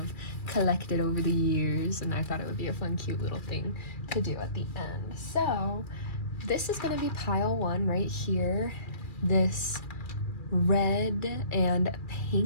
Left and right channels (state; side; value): late; right; 2.4 ms